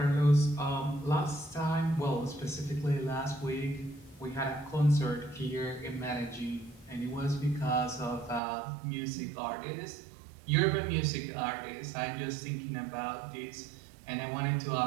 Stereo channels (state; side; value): drops out; left; at 8.4 s